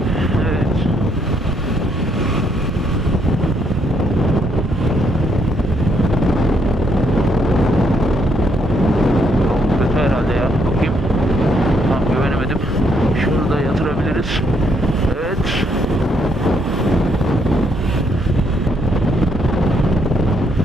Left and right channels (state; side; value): normal; both; correlation 0.73